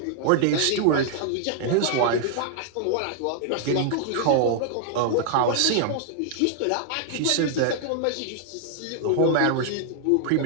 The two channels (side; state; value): both; different; correlation -0.01